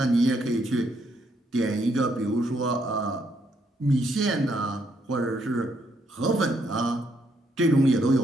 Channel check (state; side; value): normal; both; correlation 0.74